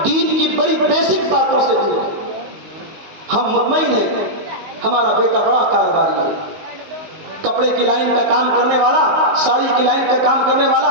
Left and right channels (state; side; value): late; left; 19 ms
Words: دین کی بڑی بیسک باتوں سے دور ہیں۔ ہم مطمئن ہیں ہمارا بیٹا بڑا کاروباری ہے، کپڑے کی لائن کا کام کرنے والا، ساڑی کی لائن کا کام کرنے والا،